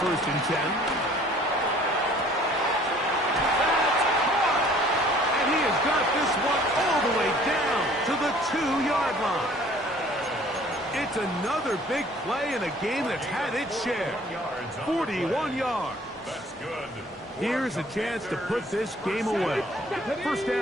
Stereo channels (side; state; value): both; normal; correlation 0.54